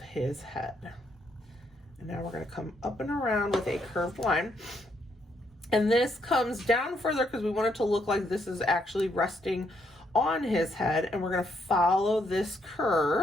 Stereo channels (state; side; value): normal; both; correlation 0.75